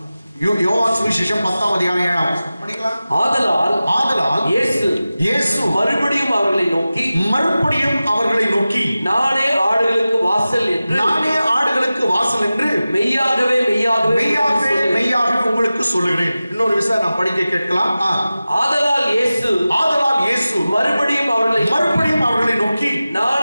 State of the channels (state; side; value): inverted; both; correlation -0.96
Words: யோவான் சுவிசேஷம் 10ஆம் அதிகாரம் 7ஆம் வசனம் படிக்கலாம். ஆதலால் இயேசு மறுபடியும் அவர்களை நோக்கி நானே ஆடுகளுக்கு வாசல் என்று மெய்யாகவே உங்களுக்கு சொல்லுகிறேன். இன்னொரு விஷயம் நான் படிக்க கேட்கலாம். ஆதலால் இயேசு மறுபடியும் அவர்களை நோக்கி